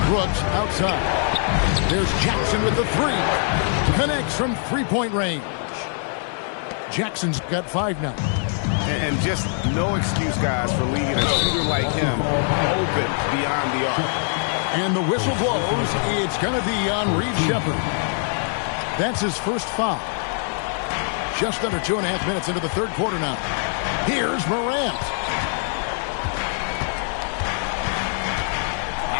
Brooks outside. There's Jackson with the 3. Connects from 3-point range. Jackson's got 5 now. And just no excuse, guys, for leaving a shooter like him open beyond the arc. And the whistle blows. It's going to be on Reed Shepard. That's his first foul. Just under 2.5 minutes into the third quarter now. Here's Morant.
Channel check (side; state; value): right; silent; 55 dB below the other